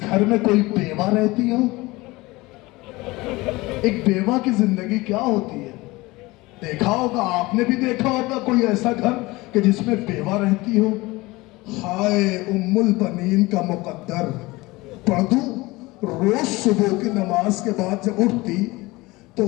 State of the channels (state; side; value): quieter; right; 21.5 dB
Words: گھر میں کوئی بیوہ رہتی ہو؟ ایک بیوہ کی زندگی کیا ہوتی ہے دیکھا ہوگا, آپ نے بھی دیکھا ہوگا کوئی ایسا گھر کہ جس میں بیوہ رہتی ہو. ہائے ام البنین کا مقدر. پڑھ دوں, روز صبح کی نماز کے بعد جب اٹھتی تو